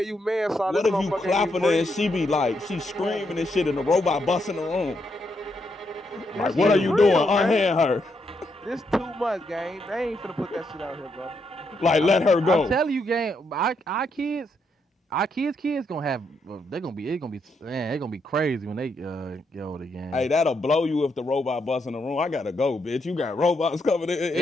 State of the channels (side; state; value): both; normal; correlation 0.79